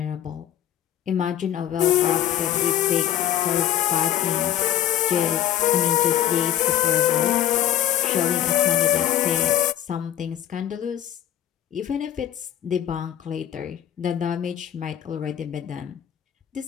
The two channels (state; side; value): quieter; right; 11.3 dB